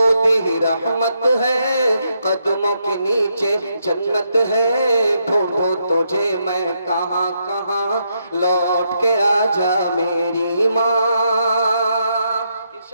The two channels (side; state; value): both; inverted; correlation -0.78